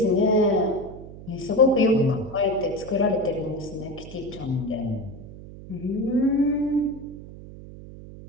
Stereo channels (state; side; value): noise; right; hum, 15 dB below the sound